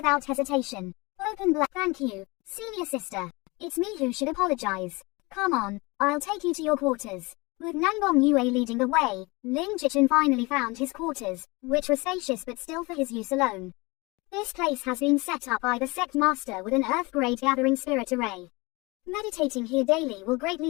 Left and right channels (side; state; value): right; quieter; 24.9 dB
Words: hesitation. Open black. Thank you, senior sister. It's me who should apologize. Come on, I'll take you to your quarters. With Nangbom Yue leading the way, Lin Jichin finally found his quarters, which were spacious but still for his use alone. This place has been set up by the sect master with an earth-grade gathering spirit array. Meditating here daily will